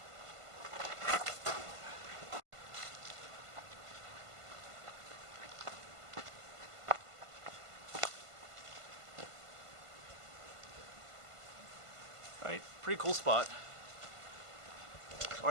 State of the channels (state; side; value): late; left; 1.5 ms